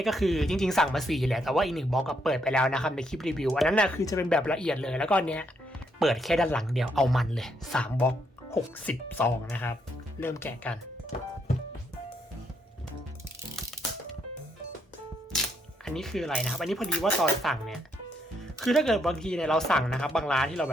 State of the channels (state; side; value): normal; both; correlation 0.75